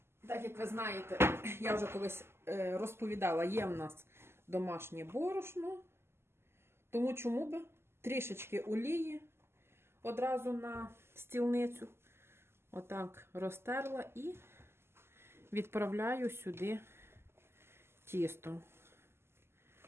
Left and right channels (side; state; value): left; late; 0.12 ms